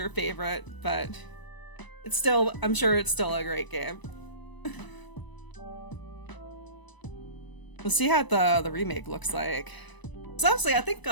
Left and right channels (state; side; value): late; right; 1.0 ms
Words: favorite, but it's still, I'm sure it's still a great game. We'll see how the remake looks like. So honestly, I think